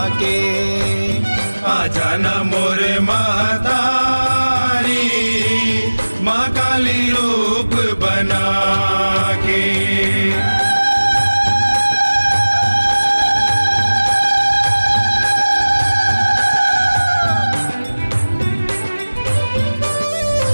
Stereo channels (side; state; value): both; inverted; correlation -1.00